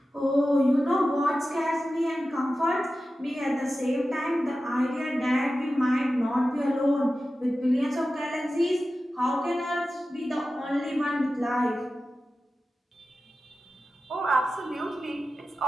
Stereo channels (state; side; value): normal; both; correlation 0.93